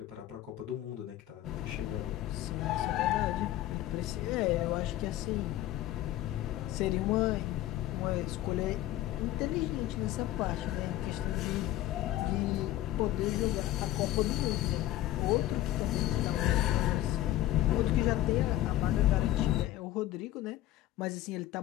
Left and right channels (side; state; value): right; quieter; 14.4 dB